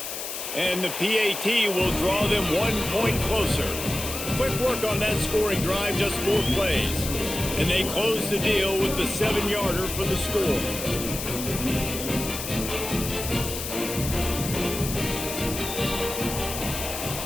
And the PAT will draw them 1 point closer. Quick work on that scoring drive, just 4 plays. And they close the deal with the 7-yarder for the score.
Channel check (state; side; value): noise; left; hiss, 6 dB below the sound